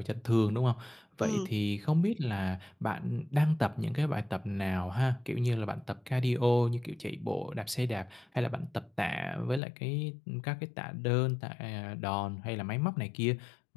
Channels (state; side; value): drops out; right; at 9.6 s